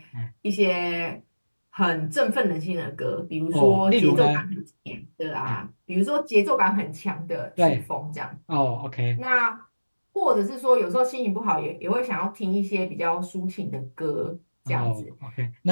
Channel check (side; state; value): both; inverted; correlation -1.00